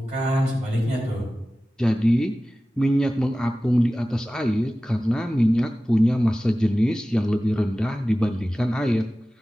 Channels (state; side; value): normal; both; correlation 0.96